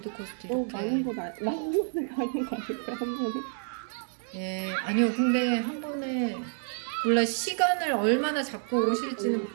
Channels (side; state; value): left; silent; digital silence